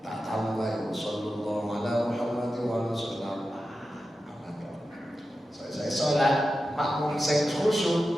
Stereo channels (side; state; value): both; normal; correlation 0.92